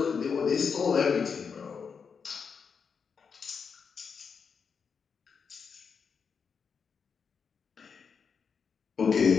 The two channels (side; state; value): right; quieter; 6.0 dB